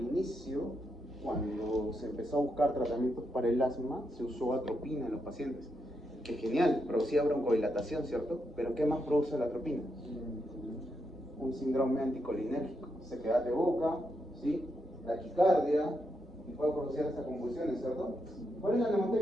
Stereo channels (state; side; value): normal; both; correlation 0.82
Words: inicio, cuando se empezó a buscar tratamientos para el asma, se usó atropina en los pacientes. Que genial, producía broncodilatación, ¿cierto? Pero ¿qué más produce la atropina? Un síndrome anticolinérgico, sequedad de boca, ¿sí? Taquicardia, y puede producir hasta convulsiones, ¿cierto? ¿Cuál es la